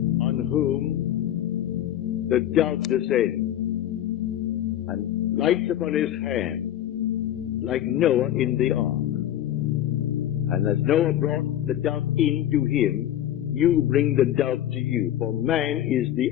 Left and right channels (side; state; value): right; quieter; 11.9 dB